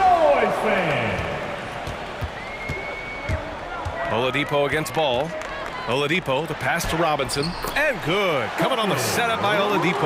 fans! Oladipo against Ball. Oladipo, the pass to Robinson, and good. Coming on the setup by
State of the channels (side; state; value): both; identical; correlation 1.00